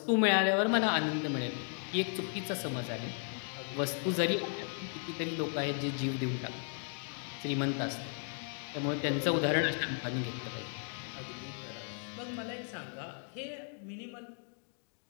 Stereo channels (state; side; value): silent; right; 54 dB below the other